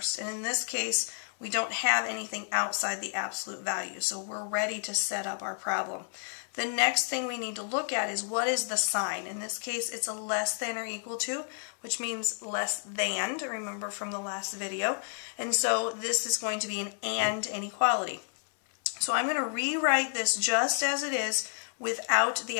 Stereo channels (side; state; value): right; silent; 57 dB below the other